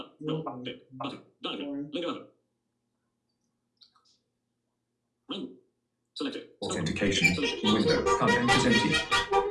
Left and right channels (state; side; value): identical; both; correlation 1.00